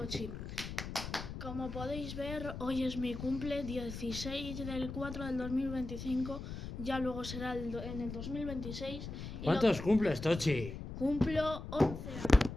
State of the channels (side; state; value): left; noise; rumble, 8 dB below the sound